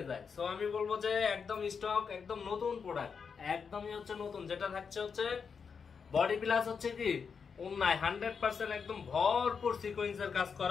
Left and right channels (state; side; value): quieter; right; 6.0 dB